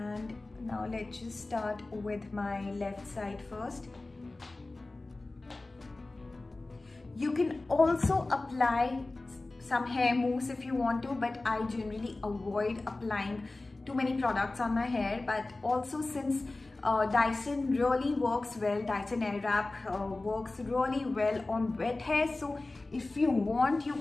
now let's just start with my left side first. You can also apply some hair mousse if you want to, but I generally avoid applying too many products on my hair. But also, since Dyson really works well, Dyson Airwrap works really well on wet hair. So if you want, you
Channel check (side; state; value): right; quieter; 3.1 dB